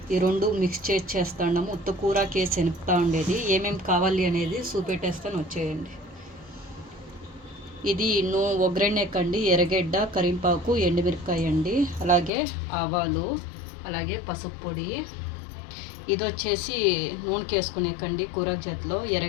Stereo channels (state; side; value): drops out; right; at 12.3 s